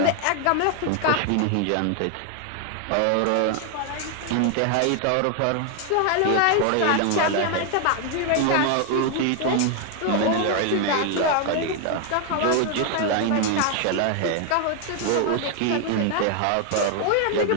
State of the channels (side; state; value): both; different; correlation 0.00